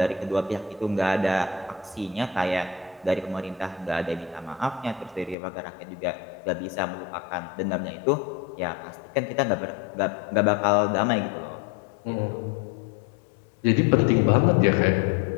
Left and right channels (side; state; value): right; drops out; at 5.4 s